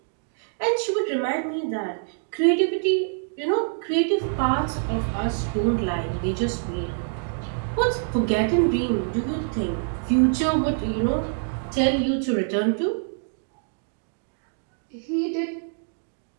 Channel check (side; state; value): left; silent; digital silence